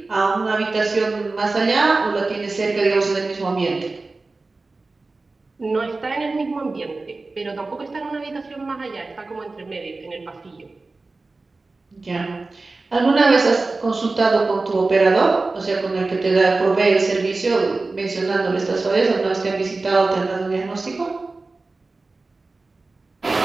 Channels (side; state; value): left; quieter; 3.5 dB